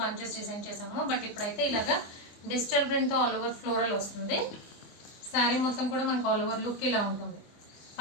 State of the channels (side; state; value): right; late; 24 ms